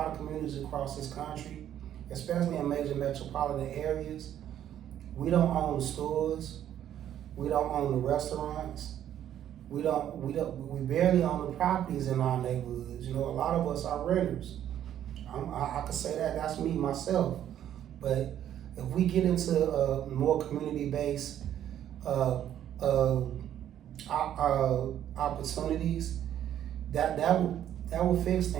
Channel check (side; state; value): left; quieter; 10.8 dB